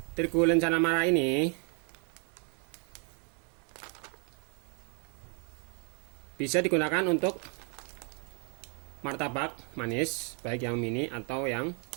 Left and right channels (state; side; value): quieter; left; 38.2 dB